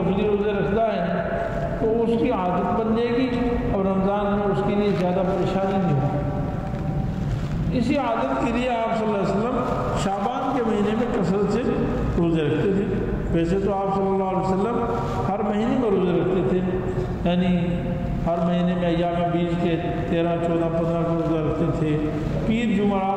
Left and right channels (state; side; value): identical; both; correlation 1.00